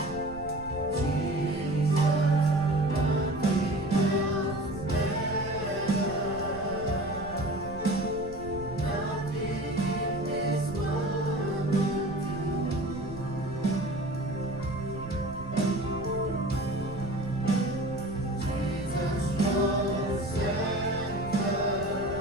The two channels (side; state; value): right; noise; rumble, 14 dB below the sound